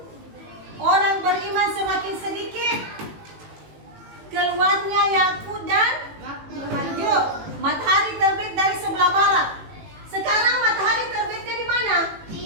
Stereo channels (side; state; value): left; late; 18 ms